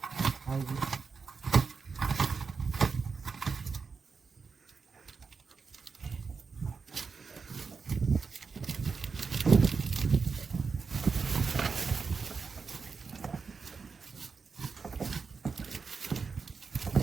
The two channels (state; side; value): quieter; left; 5.1 dB